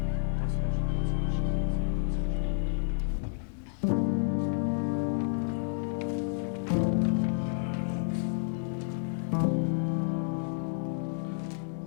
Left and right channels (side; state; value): right; silent; digital silence